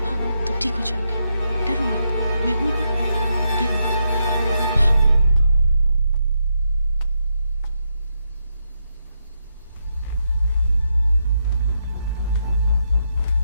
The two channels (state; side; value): inverted; both; correlation -0.81